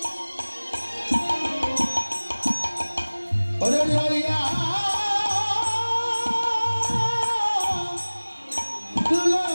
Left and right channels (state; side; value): inverted; both; correlation -1.00